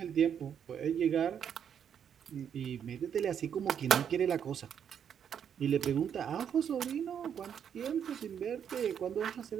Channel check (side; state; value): left; quieter; 8.3 dB